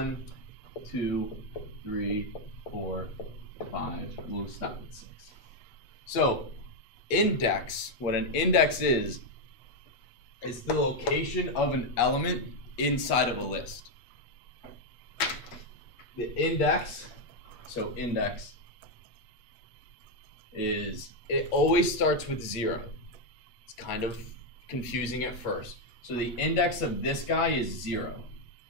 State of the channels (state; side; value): late; right; 8.3 ms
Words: 2, 3, 4, 5. We'll stop at 6. So index, what an index is the location of an element inside of a list. The index, so index is, it always starts with 0. It's kind of confusing at first. So the index of this guy is 0.